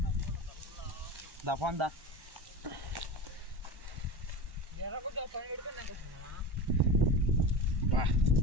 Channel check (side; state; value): left; late; 1.1 ms